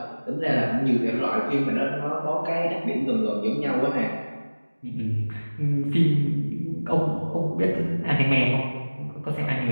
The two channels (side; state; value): both; inverted; correlation -1.00